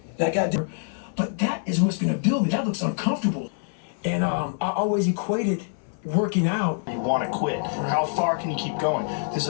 I got there. But that is what's gonna build me. That looks uncomfortable. And I always equated working out. You want to quit. How far can you keep going? There's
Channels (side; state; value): right; silent; 57 dB below the other